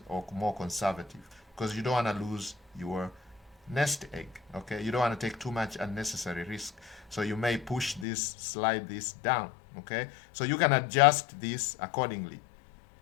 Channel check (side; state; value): right; drops out; at 8.1 s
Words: or more conservative because you don't want to lose your nest egg. Okay, you don't want to take too much unnecessary risk, so you may push this, slide this down. Okay, so you can adjust this accordingly.